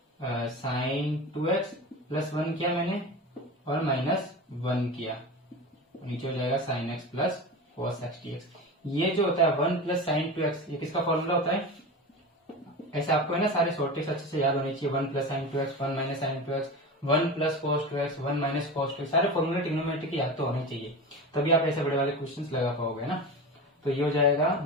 sin 2x +1 किया मैंने और -1 किया, नीचे हो जाएगा sin x plus cos x dx। ये जो होता है 1 प्लस sin 2x, ये किसका फॉर्मूला होता है। ऐसे आपको है ना सारे शॉर्ट ट्रिक्स अच्छे से याद होनी चाहिए। 1 plus sin 2x, 1 minus sin 2x, 1 plus cos 2x, 1 minus cos 2x, सारे फॉर्मूले ट्रिग्नोमेट्री की याद तो होने चाहिए, तभी आप ऐसे बड़े वाले क्वेश्चंस लगा पाओगे ना। तो ये हो जाएगा,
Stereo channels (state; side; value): normal; both; correlation 0.28